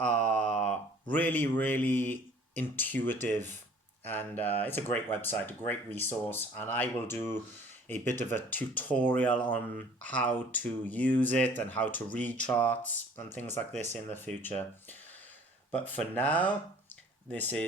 really intuitive, and it's a great website, a great resource, and I will do a bit of a tutorial on how to use it and how to read charts and things like this in the future. But for now, this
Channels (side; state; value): both; normal; correlation 0.52